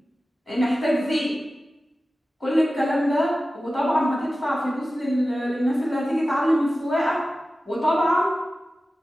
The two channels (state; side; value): normal; both; correlation 0.95